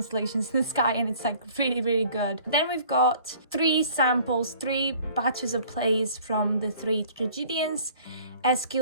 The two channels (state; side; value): inverted; both; correlation -0.52